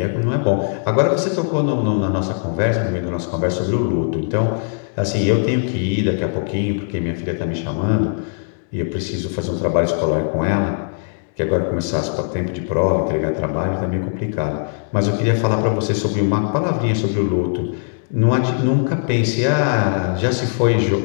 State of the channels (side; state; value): right; silent; 66 dB below the other